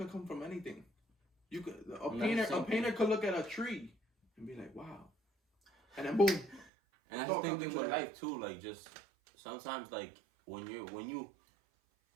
come from anything. You could a painter could look at a tree and be like, "Wow," and then boom. And that's the thing with life too. Like, just sometimes, like when you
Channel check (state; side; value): drops out; left; at 6.7 s